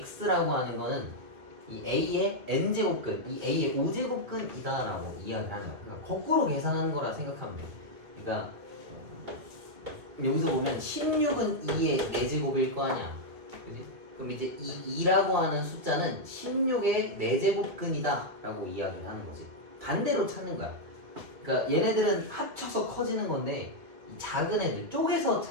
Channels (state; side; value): late; left; 2.2 ms